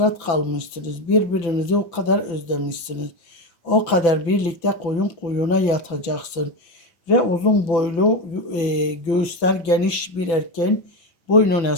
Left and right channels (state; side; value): late; right; 6.0 ms